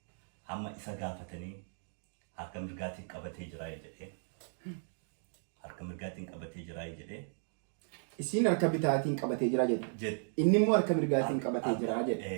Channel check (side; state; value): left; silent; digital silence